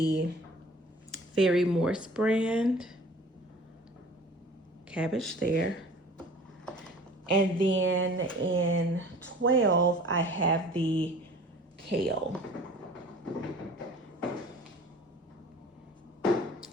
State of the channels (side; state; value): both; normal; correlation 0.46